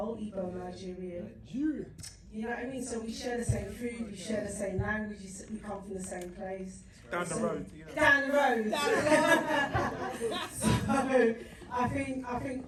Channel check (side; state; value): both; identical; correlation 1.00